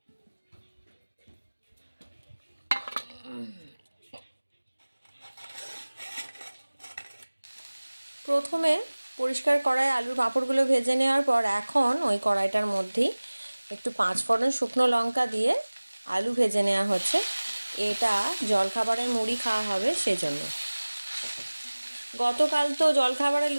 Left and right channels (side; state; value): both; inverted; correlation -1.00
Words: প্রথমে পরিষ্কার কড়াই আলুর পাঁপড়গুলো ভেজে নেওয়ার পর এখন ওই কড়াইটার মধ্যেই একটু 5 ফোড়ন শুকনো লঙ্কা দিয়ে আলু ভেজে নেওয়া হচ্ছে। এটা জলখাবারের মুড়ি খাওয়া হবে সেজন্য। গতকাল তো জলখাবারে